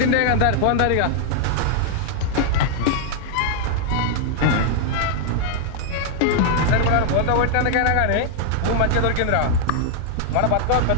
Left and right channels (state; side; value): different; both; correlation -0.01